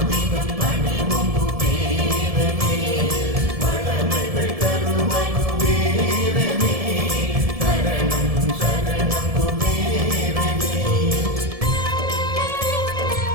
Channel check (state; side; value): late; left; 1.7 ms